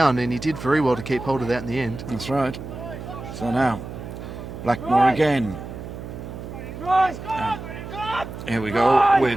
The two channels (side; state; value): right; noise; hum, 10 dB below the sound